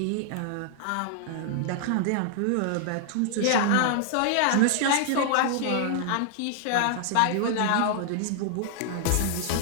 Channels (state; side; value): different; both; correlation -0.01